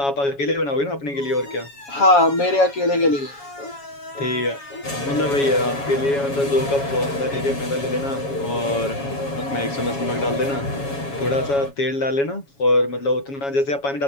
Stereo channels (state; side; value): late; right; 7.2 ms